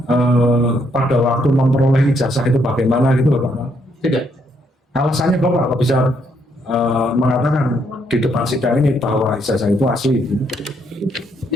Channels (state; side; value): normal; both; correlation 0.73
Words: pada waktu memperoleh ijazah itu bagaimana gitu Bapak? Tidak. Alasannya Bapak apa bisa mengatakan di depan sidang ini bahwa ijazah itu asli?